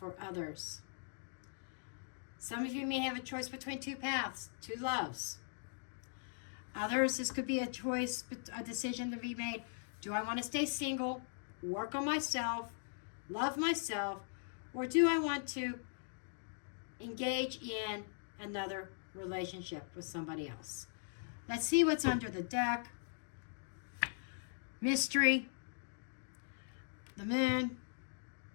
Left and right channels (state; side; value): silent; right; digital silence